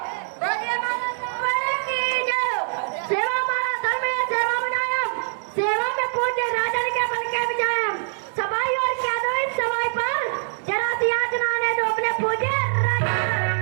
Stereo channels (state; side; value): silent; left; digital silence